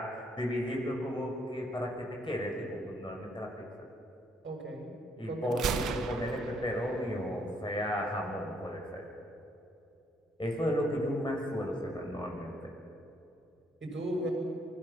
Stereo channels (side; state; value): both; normal; correlation 0.70